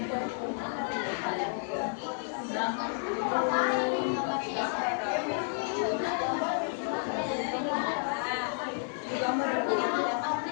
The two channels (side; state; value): right; silent; digital silence